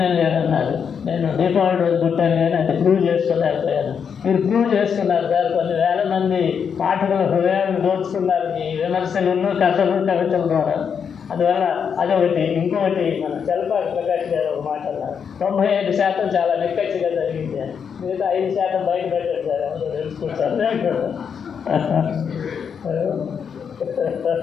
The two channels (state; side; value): quieter; right; 7.0 dB